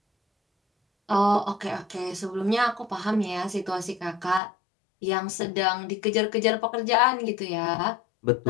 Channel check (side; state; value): right; drops out; at 4.4 s